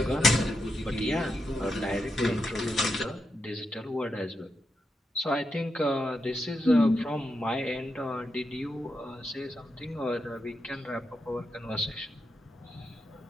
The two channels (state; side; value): normal; both; correlation 0.85